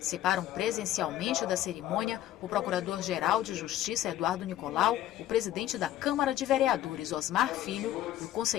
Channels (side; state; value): right; quieter; 13.0 dB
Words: presencialmente da cerimônia o Procurador-Geral de Justiça, Eduardo Nicolau, o presidente da Câmara de Vereadores, Osmar Filho, e o